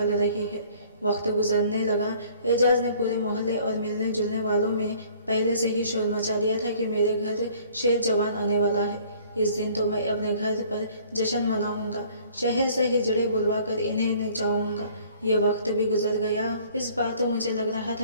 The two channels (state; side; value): inverted; both; correlation -0.55